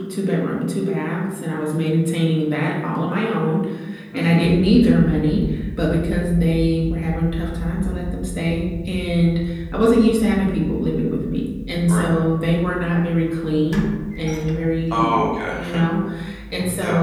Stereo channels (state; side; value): identical; both; correlation 1.00